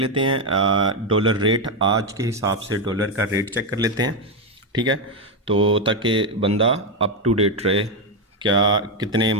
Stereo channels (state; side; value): normal; both; correlation 0.06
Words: हैं डॉलर रेट, आज के हिसाब से डॉलर का रेट चेक कर लेते हैं, ठीक है। तो ताकि बंदा अप टू डेट रहे, क्या कितने